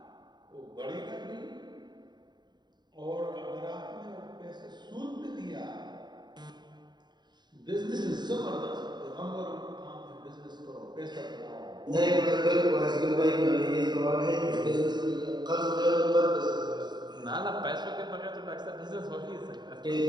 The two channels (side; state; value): left; late; 0.21 ms